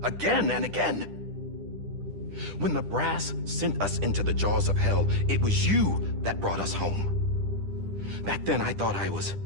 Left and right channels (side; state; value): left; late; 10 ms